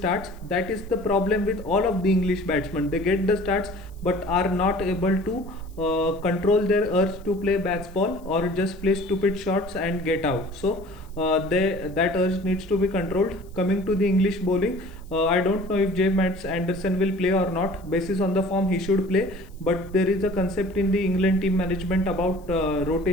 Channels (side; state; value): left; noise; hiss, 30 dB below the sound